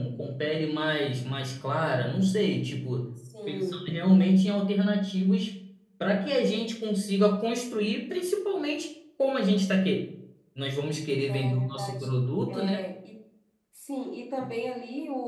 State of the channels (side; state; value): both; identical; correlation 1.00